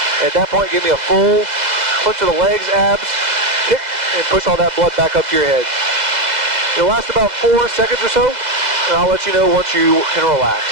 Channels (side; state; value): left; late; 2.0 ms